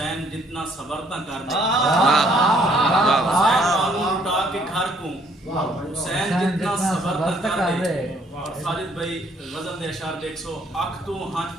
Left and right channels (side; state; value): both; normal; correlation 0.65